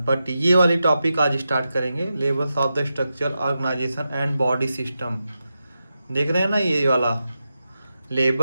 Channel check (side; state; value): both; inverted; correlation -0.89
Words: ये वाली टॉपिक आज स्टार्ट करेंगे, levels of the structure, organization and body system. देख रहे हैं ना ये वाला,